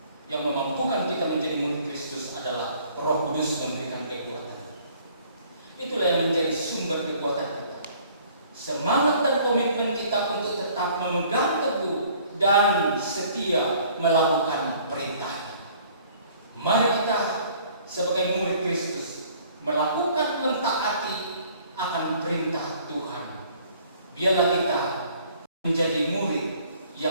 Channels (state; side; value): inverted; both; correlation -0.56